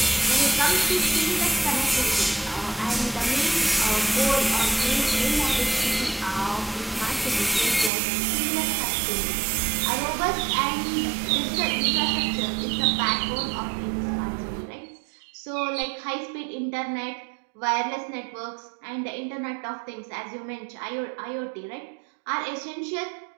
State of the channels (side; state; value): left; drops out; at 7.9 s